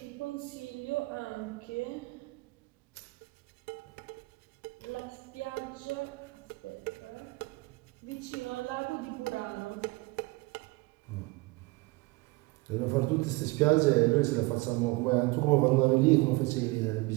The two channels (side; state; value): left; quieter; 23.8 dB